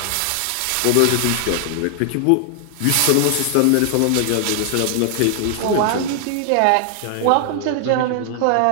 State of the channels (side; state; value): both; different; correlation 0.00